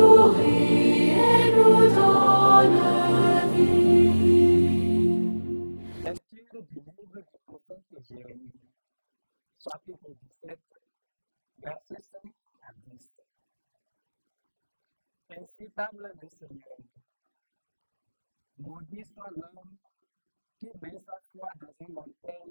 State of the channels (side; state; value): both; inverted; correlation -1.00